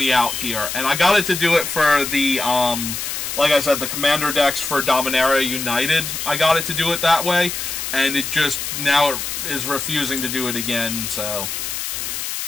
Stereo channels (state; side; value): noise; left; hiss, 4 dB below the sound